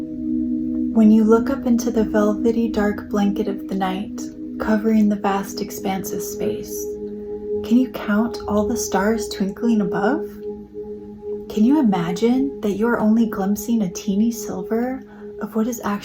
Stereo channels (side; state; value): both; identical; correlation 1.00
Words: When you look up into the velvety dark blanket of the night, covering the vast expanse of space, can you count all the stars twinkling above? Can you imagine that you are only glimpsing a teeny sliver of what is